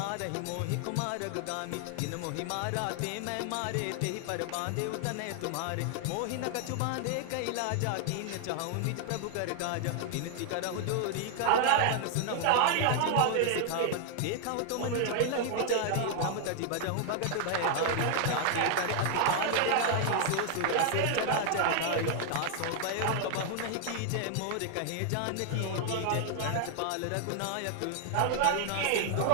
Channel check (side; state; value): both; different; correlation 0.00